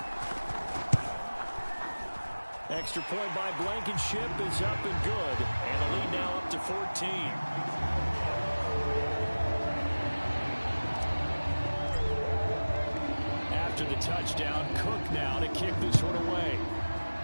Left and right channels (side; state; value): both; inverted; correlation -1.00